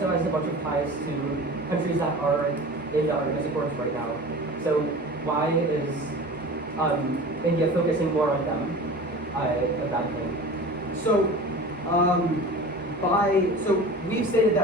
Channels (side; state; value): both; normal; correlation 0.37